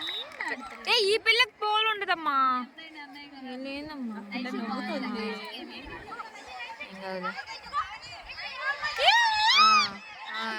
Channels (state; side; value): identical; both; correlation 1.00